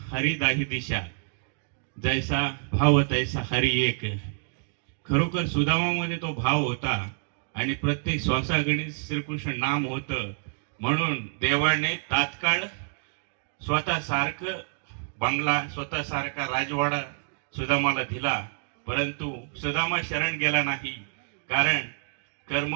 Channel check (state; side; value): silent; left; digital silence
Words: हरी दाही दिशा, जैसा भाव तैसा हरी एक. खरोखर सुदामामध्ये तो भाव होता आणि प्रत्येक श्वासागणित श्रीकृष्ण नाम होतं. म्हणून देवाने तात्काळ स्वतःसारखं बंगला, स्वतःसारखा राजवाडा सुदामाला दिला. परंतु सुदामा शरण गेला नाही. कारण